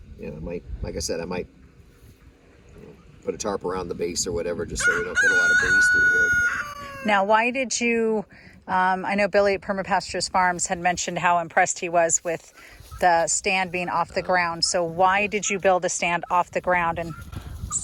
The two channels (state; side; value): identical; both; correlation 1.00